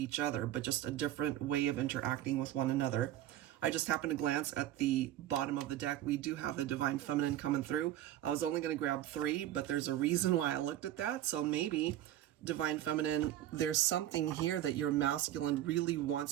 other, but just a different way of interacting with one another. I just happened to glance at the bottom of the deck. We do have the Divine Feminine coming through. I was only going to grab 3, but there's a reason why I looked at that. So maybe Divine Feminine, there's something here that your masculine really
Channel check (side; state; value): left; quieter; 12.9 dB